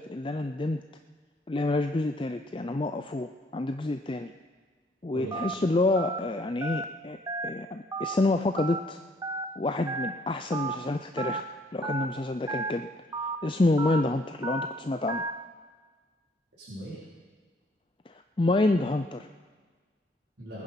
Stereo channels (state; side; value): normal; both; correlation 0.64